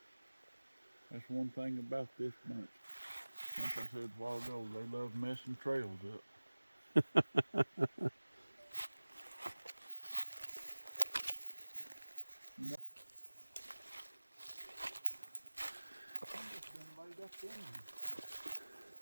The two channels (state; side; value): inverted; both; correlation -1.00